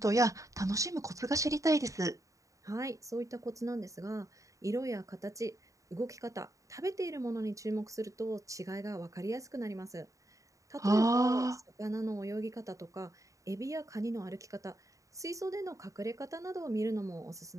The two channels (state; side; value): late; left; 0.16 ms